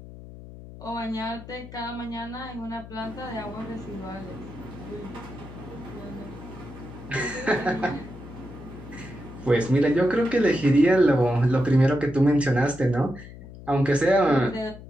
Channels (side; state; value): left; noise; hum, 15 dB below the sound